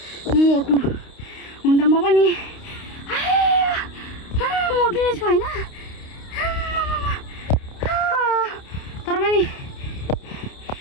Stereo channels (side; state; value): right; late; 29 ms